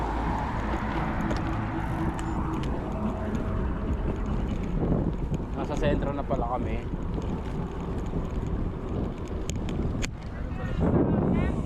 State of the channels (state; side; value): identical; both; correlation 1.00